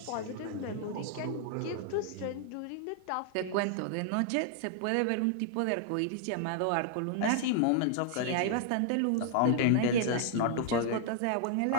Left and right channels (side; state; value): both; different; correlation 0.00